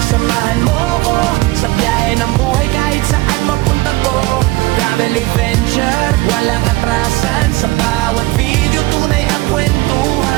samahan mo ko sa biyahe ng buhay kahit saan mapunta ko. Travel adventure, walang atrasan, sa bawat video tunay ang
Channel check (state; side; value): quieter; left; 21.0 dB